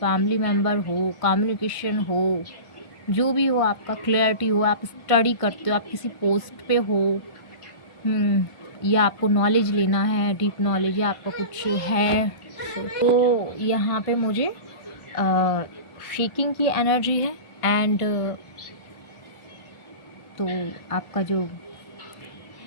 मेम्बर हो, कम्युनिकेशन हो, जो भी हो, आपका क्लैरिटी हो, आप स्टडी करते हो, आप किसी पोस्ट पे हो, या आपको नॉलेज लेना है, डीप नॉलेज, या आपका कुछ है, तो यहाँ पे मुझे शेकिंग की एनर्जी है। एंड तो आपका जो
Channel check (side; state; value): right; late; 1.5 ms